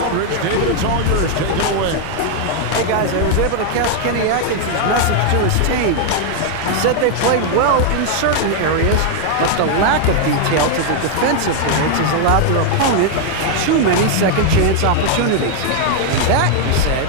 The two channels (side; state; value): both; different; correlation 0.00